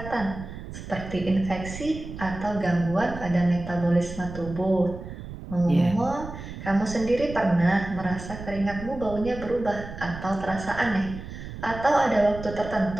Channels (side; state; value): right; noise; rumble, 11 dB below the sound